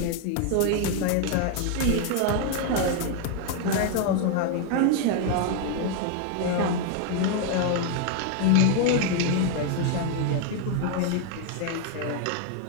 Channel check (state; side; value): different; both; correlation 0.00